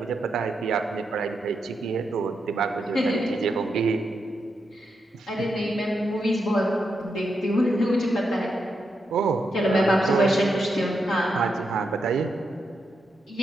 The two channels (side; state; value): both; normal; correlation 0.84